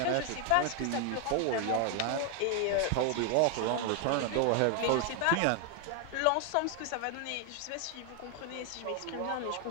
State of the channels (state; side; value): different; both; correlation 0.00